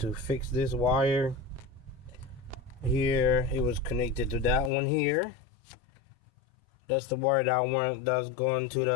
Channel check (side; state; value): right; drops out; at 4.7 s